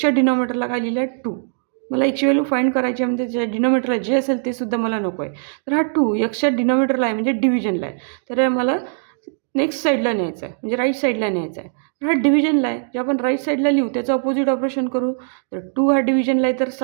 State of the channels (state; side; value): silent; left; digital silence